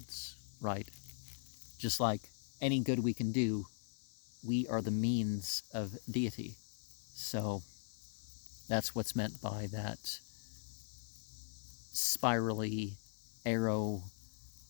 right? Just like any good we can do, we are the means of deity. So that's what's meant by that spirally arrow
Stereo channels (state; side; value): silent; right; digital silence